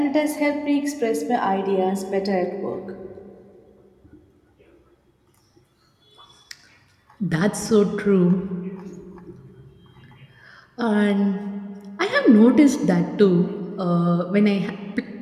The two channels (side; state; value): both; identical; correlation 1.00